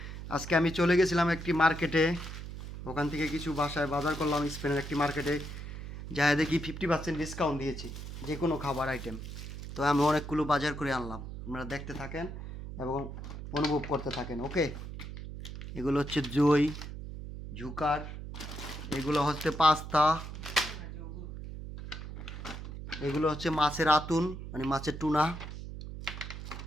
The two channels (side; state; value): right; noise; hum, 9 dB below the sound